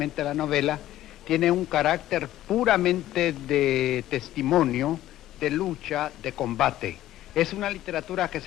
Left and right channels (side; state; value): right; quieter; 13.9 dB